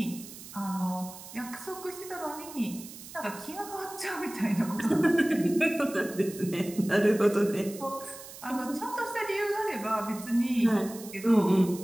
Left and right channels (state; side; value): noise; right; hiss, 15 dB below the sound